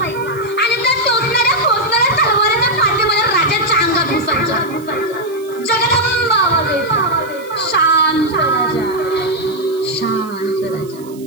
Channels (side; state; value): right; noise; hiss, 23 dB below the sound